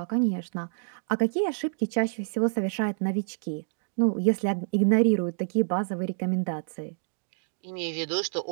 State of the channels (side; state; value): left; silent; digital silence